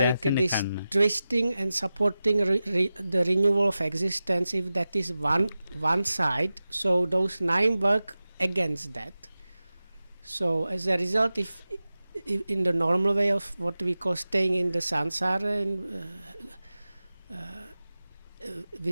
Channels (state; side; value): inverted; both; correlation -0.95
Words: this twisting and supporting the renewal of existence. If that is one side, so those 9 work against that. So as a result, if in the normal way of what we call staying in the samsara and